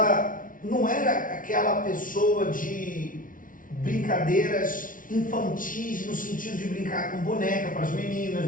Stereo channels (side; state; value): right; late; 0.39 ms